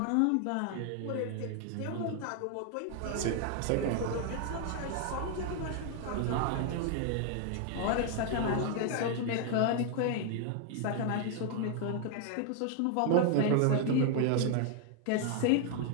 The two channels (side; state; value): both; different; correlation 0.00